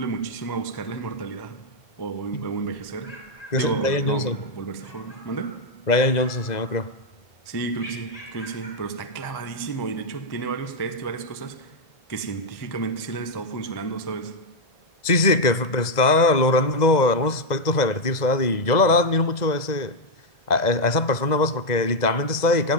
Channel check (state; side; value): late; right; 2.0 ms